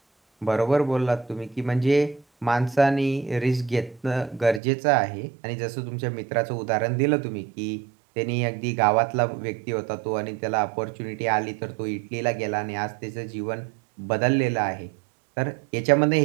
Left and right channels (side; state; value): left; drops out; at 4.6 s